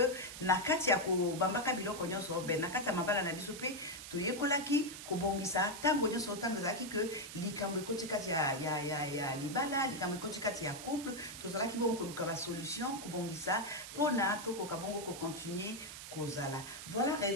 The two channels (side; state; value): right; noise; hiss, 10 dB below the sound